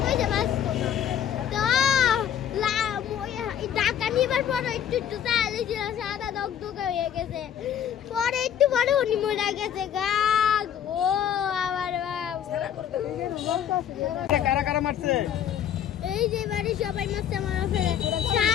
কইছে বাঁচতো তো টাকা নিবার পর একটু একটু চাইলে সাদা দগদগে হয়ে গেছে, পরে একটু পরে উনি মরে গেছে গা ও আমার কারা কারা মারছে? এই যে বাড়ি সবাই মারছে, মারা ফেলে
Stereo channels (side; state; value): right; quieter; 9.5 dB